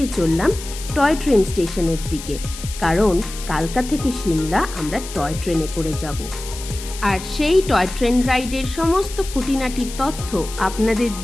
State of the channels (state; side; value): noise; left; hiss, 12 dB below the sound